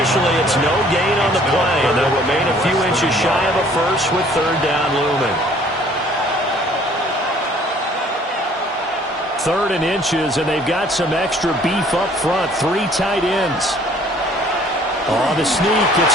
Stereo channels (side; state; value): both; normal; correlation 0.57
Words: it's no gain on the play, and they'll remain a few inches shy of a first with 3rd down looming. 3rd and inches, and they've got some extra beef up front. 3 tight ends. On the sneak, it's